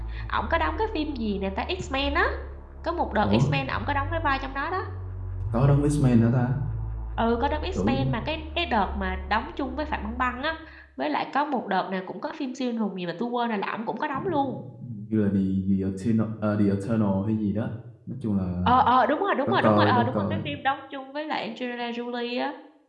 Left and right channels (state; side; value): identical; both; correlation 1.00